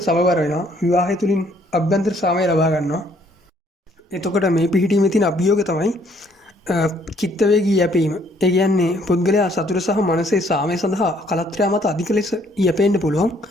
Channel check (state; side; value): normal; both; correlation 0.64